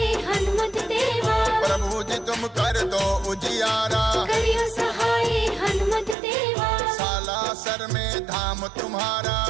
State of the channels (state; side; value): drops out; left; at 6.2 s